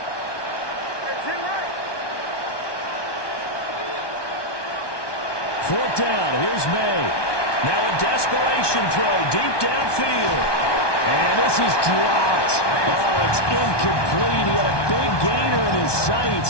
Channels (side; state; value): right; late; 1.2 ms